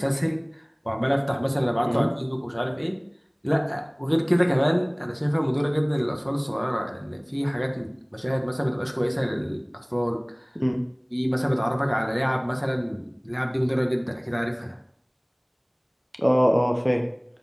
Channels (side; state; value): both; identical; correlation 1.00